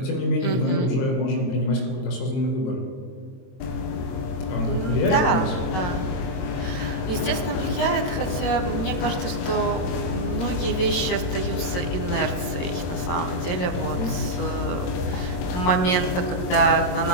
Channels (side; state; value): right; late; 22 ms